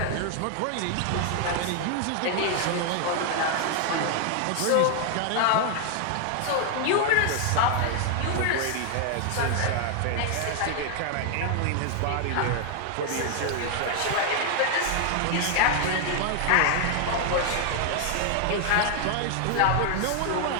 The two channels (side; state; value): both; different; correlation 0.00